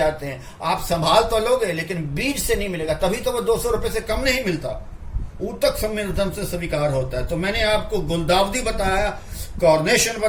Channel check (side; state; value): both; identical; correlation 1.00